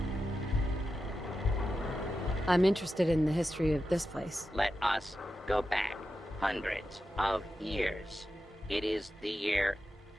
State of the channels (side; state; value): both; normal; correlation 0.90